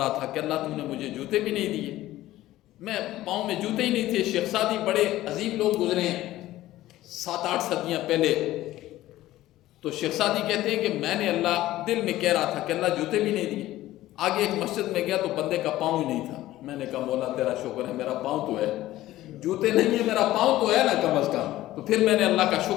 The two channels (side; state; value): right; quieter; 15.4 dB